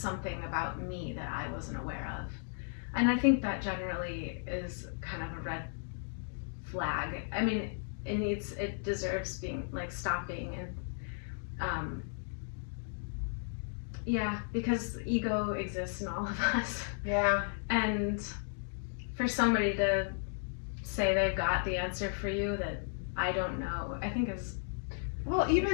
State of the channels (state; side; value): silent; right; digital silence